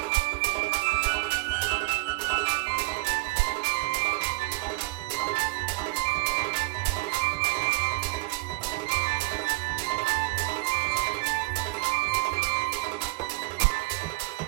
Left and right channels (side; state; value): left; quieter; 22.8 dB